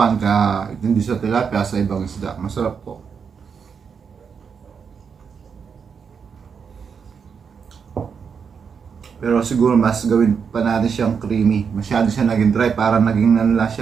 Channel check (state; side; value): quieter; left; 6.4 dB